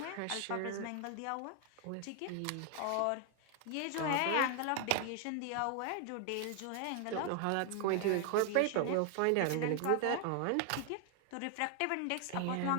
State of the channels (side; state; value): both; different; correlation 0.00